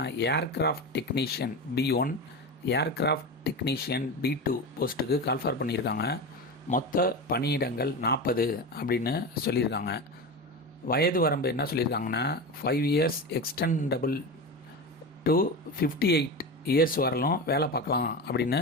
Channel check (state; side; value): normal; both; correlation 0.23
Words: aircraft technician B1, aircraft technician B2 போஸ்ட்டுக்கு கால்ஃபார் பண்ணியிருக்காங்க. மொத்த பணியிடங்கள் 40 அப்படின்னு சொல்லியிருக்காங்க. வயது வரம்பு என்ன சொல்லியிருக்காங்கன்னா, 5 years எக்ஸ்டெண்டபிள் டு 58 இயர்ஸ் வரலும் வேலை பார்க்கலாம் அப்படின்னு